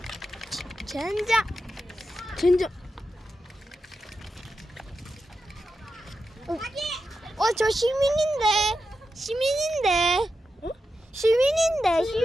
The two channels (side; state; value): both; normal; correlation 0.90